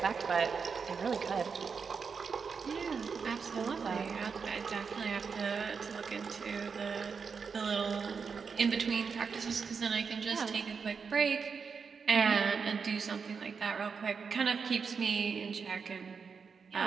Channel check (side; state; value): left; quieter; 5.7 dB